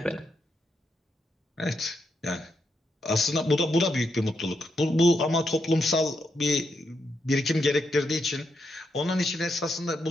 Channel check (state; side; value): normal; both; correlation 0.82